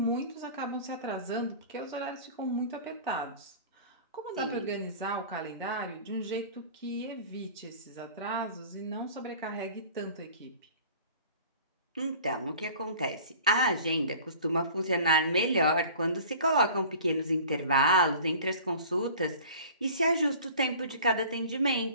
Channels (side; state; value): both; inverted; correlation -0.44